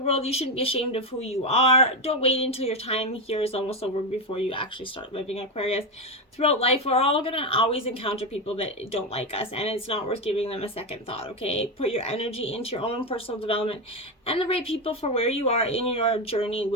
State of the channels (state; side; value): normal; both; correlation 0.11